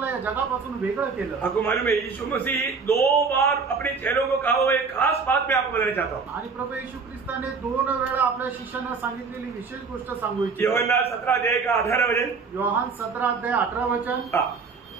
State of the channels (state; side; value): quieter; left; 5.0 dB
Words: या जगापासून वेगळं केलं। आपको मालूम है यीशु मसीह 2 बार अपने चेलों को कहा हुआ एक खास बात मैं आपको बताना चाहता हूँ। आणि प्रभू येशू ख्रिस्ताने 2 वेळा आपल्या शिष्यांना सांगितलेली विशेष गोष्ट सांगू इच्छितो। योहन्ना 17 अध्याय का 18 वचन। योहान 17 अध्याय 18 वचन।